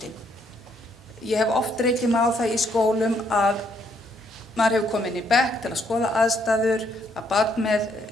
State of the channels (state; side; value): normal; both; correlation 0.71